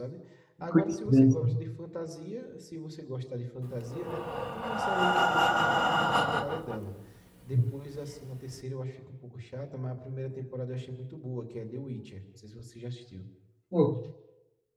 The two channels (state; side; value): identical; both; correlation 1.00